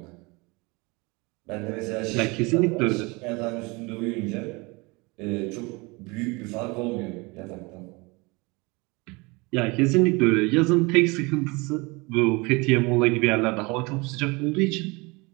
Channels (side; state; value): left; quieter; 26.2 dB